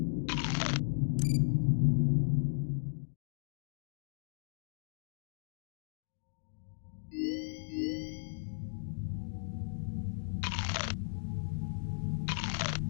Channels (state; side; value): silent; right; digital silence